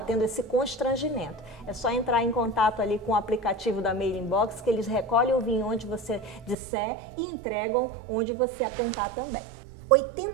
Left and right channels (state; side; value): drops out; left; at 6.6 s